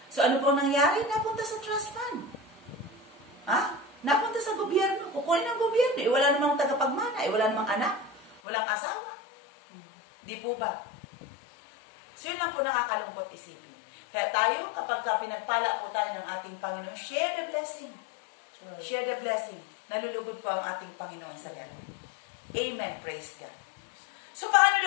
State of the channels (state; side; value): drops out; right; at 8.4 s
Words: So ano po nangyari? Napunta sa trust fund. Napunta sa gobyerno. Kukunin ng gobyerno. Wala namang tagapagmana. Wala namang anak. Walang asawa. Di po ba? So yun lang po nakakalungkot isipin. Kaya tayo, kapag pinagpala po tayo ng ating Panginoon, share the blessing. Sure. Share the blessing. Nalulugod po ang ating Panginoon sa ganun. Amen. Praise God. So, paano